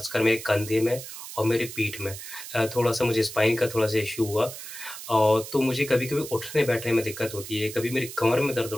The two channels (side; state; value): right; noise; hiss, 11 dB below the sound